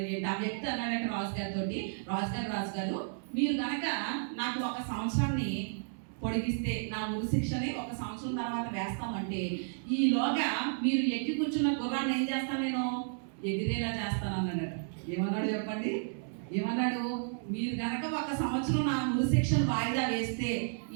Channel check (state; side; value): silent; left; digital silence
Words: వ్యక్తి అన్నాడట రాజు గారు, మీరు కనుక నాకు 1 సంవత్సరాన్ని పొడిగిస్తే, నా ఉరి శిక్షని 1 సంవత్సరం తర్వాత వేస్తామంటే, ఈలోగా మీరు ఎక్కి కూర్చున్న గుర్రాన్ని ఏం చేస్తాను? నేను ఎగిరేలా చేస్తాను అన్నాడట. ఏమన్నాడు చెప్పండి? ఏమన్నాడు? మీరు కనుక 1 సంవత్సరం నా ఉరి శిక్షను వాయిదా వేస్తే,